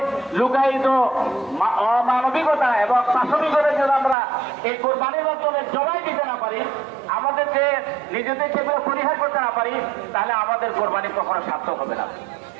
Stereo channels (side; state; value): left; drops out; at 4.2 s